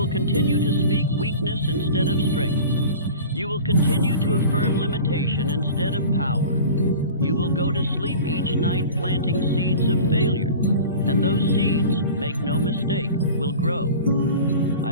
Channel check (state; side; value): inverted; both; correlation -0.38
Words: continue to speak weakness instead of strength. You will continue to affirm limitation instead of power. You will go to sleep each night planting seeds of failure, and those seeds, make no mistake, will grow.